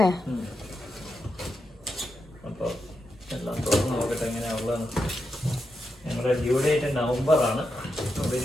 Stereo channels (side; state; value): both; normal; correlation 0.86